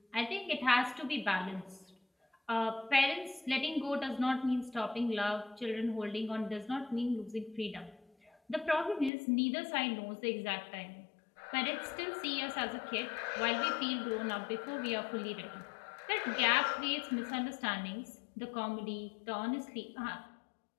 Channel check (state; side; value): drops out; right; at 9.1 s